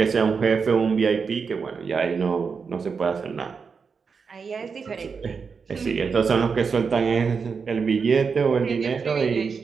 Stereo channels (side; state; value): left; quieter; 5.5 dB